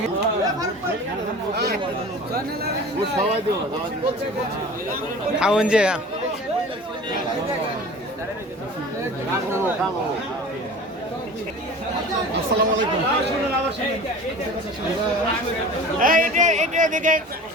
খাওন যে আসসালামু আলাইকুম।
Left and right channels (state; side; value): normal; both; correlation 0.40